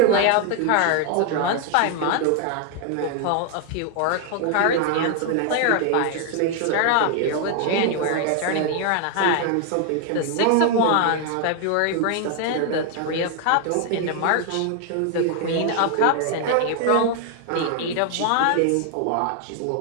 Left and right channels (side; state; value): both; different; correlation 0.00